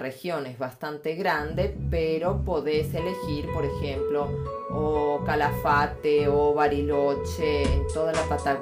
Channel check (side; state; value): both; identical; correlation 1.00